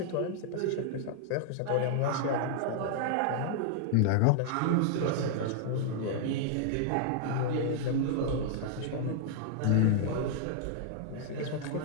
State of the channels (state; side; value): different; both; correlation -0.01